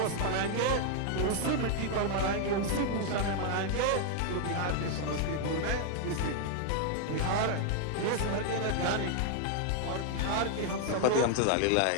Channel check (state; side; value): different; both; correlation 0.00